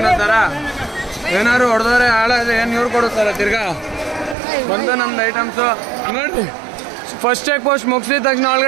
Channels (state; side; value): drops out; left; at 4.4 s